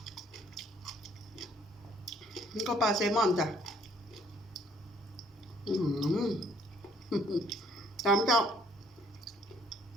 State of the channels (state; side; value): normal; both; correlation 0.62